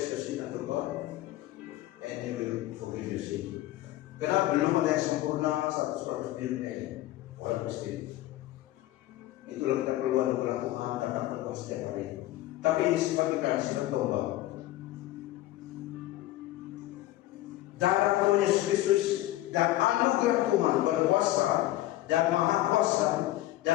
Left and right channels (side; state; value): right; quieter; 15.8 dB